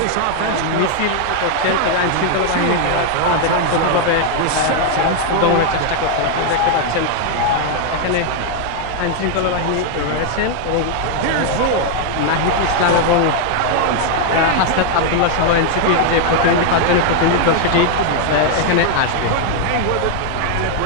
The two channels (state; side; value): different; both; correlation 0.00